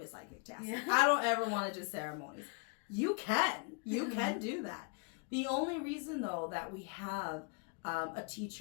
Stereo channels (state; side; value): quieter; right; 37.3 dB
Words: be a psychic, Tassie. Yeah. I don't ever want to do ceremonies. You can do that. The only reason, though, that we have a